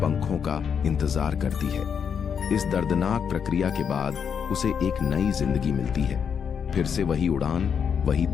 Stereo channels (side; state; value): right; quieter; 7.2 dB